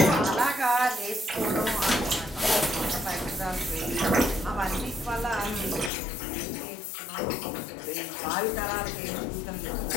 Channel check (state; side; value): drops out; right; at 5.9 s